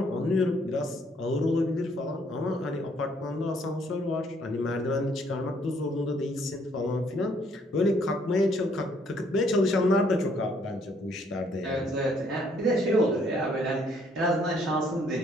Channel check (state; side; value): normal; both; correlation 0.66